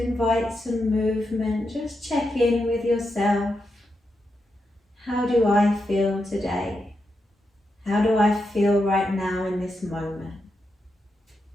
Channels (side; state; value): both; normal; correlation 0.85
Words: invite some movement, just check in with yourself. How do I feel today? How do I feel right now in this moment?